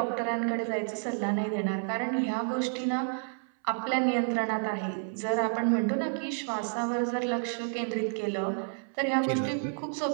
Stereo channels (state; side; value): silent; left; 58 dB below the other